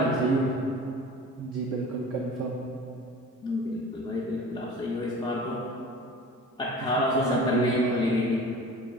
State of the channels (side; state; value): both; normal; correlation 0.40